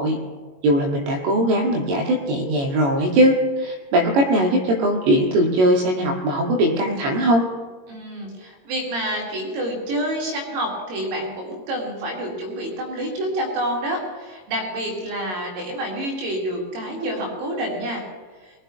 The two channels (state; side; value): late; left; 22 ms